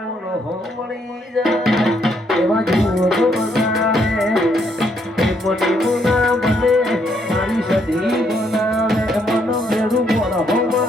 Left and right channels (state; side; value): normal; both; correlation 0.72